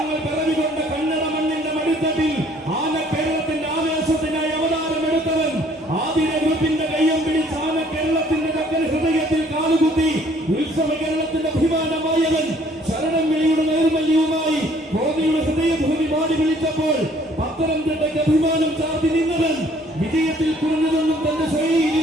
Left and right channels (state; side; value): normal; both; correlation 0.60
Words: പിറവികൊണ്ട കന്നഡ മണ്ണിന്റെ മടിത്തട്ടിൽ ആന കേരളത്തിന്റെ ആവേശത്തിനായി അവതാരമെടുത്തവൻ. ആതിര ഗ്രൂപ്പിന്റെ കയ്യം പിടിച്ച് ആന കേരളത്തിന്റെ ചക്കര ഹൃദയത്തിൽ കാലുകുത്തി ഉത്സവ കേരളത്തിന്റെ അഭിമാനമായവൻ. ശരണം വിളിയുടെ നൈർമല്യവുമായി കോന്നിയുടെ ഹൃദയഭൂമി പാടി വിളിച്ചപ്പോൾ പത്തനംതിട്ടയ്ക്ക് അഭിമാനം ചാർത്തി നിന്നവൻ. വിജയത്തിൽ കുറഞ്ഞതൊന്നും തന്റെ ശൈലിയിൽ